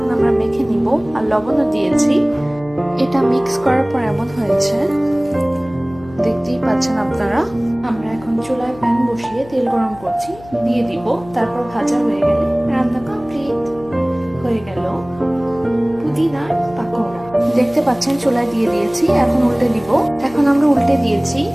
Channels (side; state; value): left; noise; hum, 19 dB below the sound